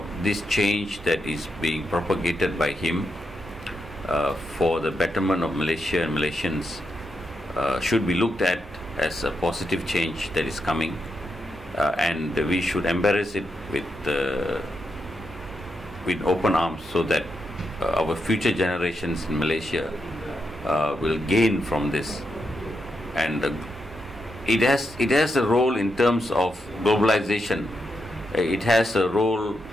this change that is being propagated by him for the betterment of Malaysia and Malaysians should be looked at as a positive change that is coming, and we should embrace it with open arms, so that our future generations in Malaysia will gain from this. And it has a role in terms of globalization. It has a role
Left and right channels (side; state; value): both; normal; correlation 0.84